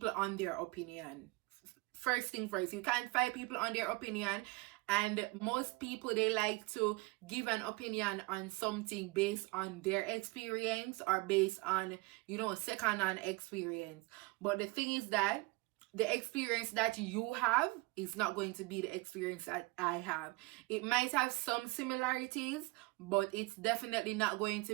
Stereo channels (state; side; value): quieter; left; 24.5 dB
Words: on their opinion. First thing first, you can't fight people on their opinion. And most people, they like to give an opinion on something based on their experience or based on, second-hand experience. But the thing is that the experience that you have is not going to be the experience that I have. It might have some similarities, but it's definitely not going to